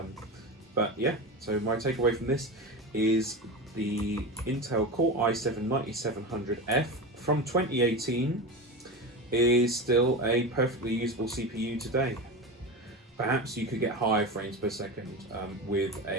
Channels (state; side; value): normal; both; correlation 0.24